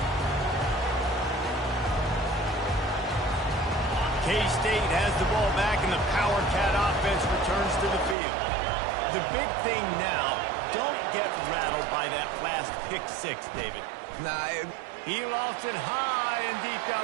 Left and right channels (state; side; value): drops out; left; at 8.2 s